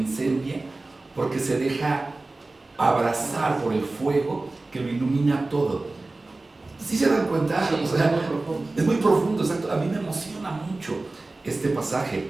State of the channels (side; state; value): left; quieter; 3.2 dB